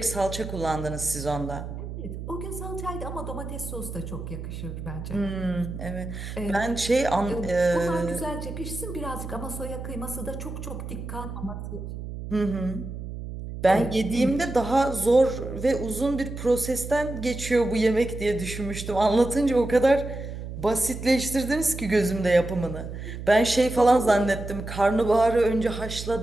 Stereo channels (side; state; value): right; noise; hum, 8 dB below the sound